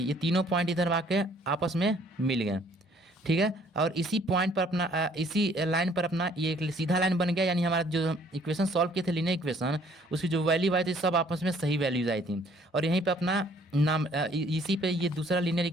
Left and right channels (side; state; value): both; normal; correlation 0.60